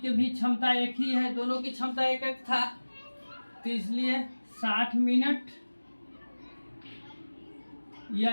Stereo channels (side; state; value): both; inverted; correlation -1.00